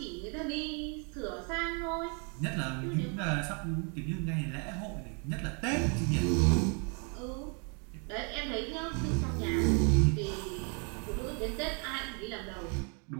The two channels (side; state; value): left; quieter; 37.4 dB